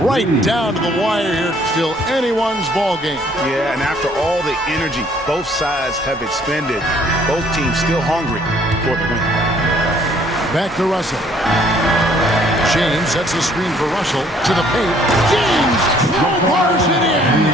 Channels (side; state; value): both; normal; correlation 0.61